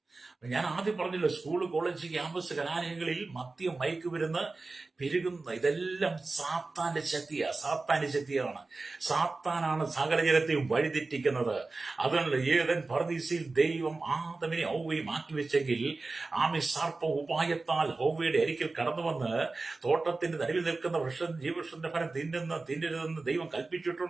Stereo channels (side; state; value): left; quieter; 3.6 dB